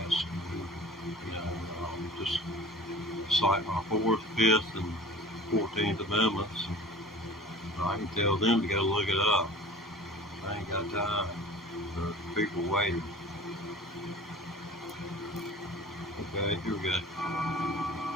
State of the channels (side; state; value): both; normal; correlation 0.42